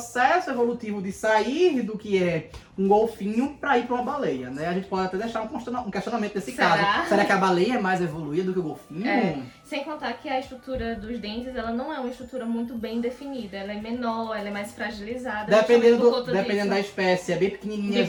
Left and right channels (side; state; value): both; identical; correlation 1.00